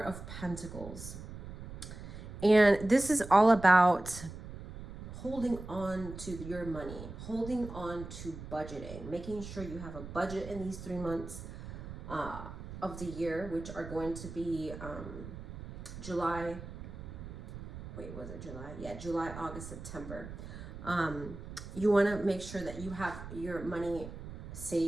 Pentacles. And this is all about holding on to your money, holding on to budgeting, making sure you have a budget in these 3 months of the year, which are going to be July, July, August, September. You want to make sure that you have your money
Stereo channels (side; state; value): right; noise; rumble, 11 dB below the sound